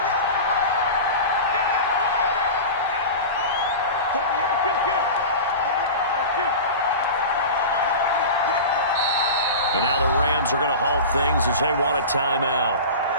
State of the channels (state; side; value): inverted; both; correlation -0.30